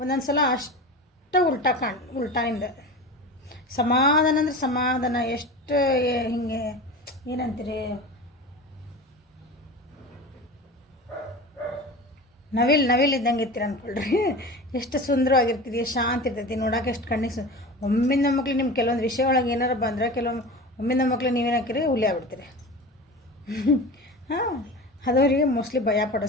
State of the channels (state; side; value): normal; both; correlation 0.32